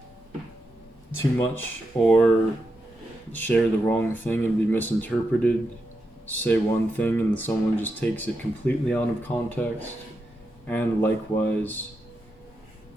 too much or share the wrong thing and be misinterpreted. Say one thing and someone just takes it completely out of context. And likewise,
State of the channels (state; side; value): normal; both; correlation 0.86